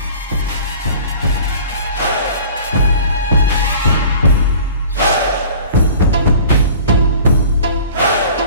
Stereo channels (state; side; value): inverted; both; correlation -0.45